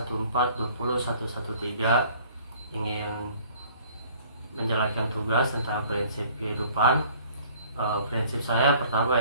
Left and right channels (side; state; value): both; inverted; correlation -0.54